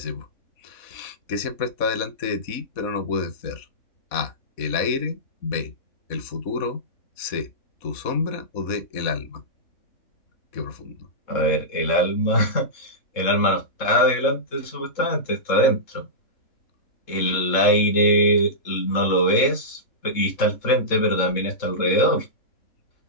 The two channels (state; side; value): late; right; 3.7 ms